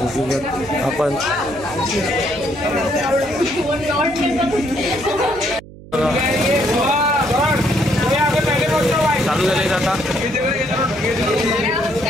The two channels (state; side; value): noise; right; hum, 18 dB below the sound